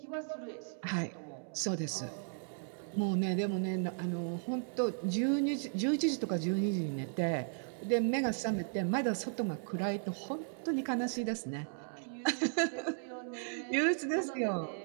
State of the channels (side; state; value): left; silent; digital silence